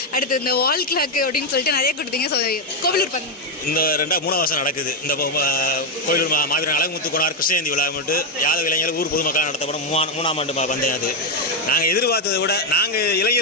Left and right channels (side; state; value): both; normal; correlation 0.04